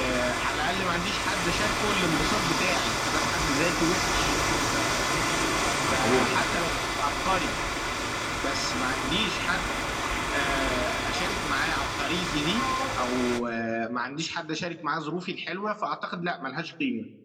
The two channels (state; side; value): identical; both; correlation 1.00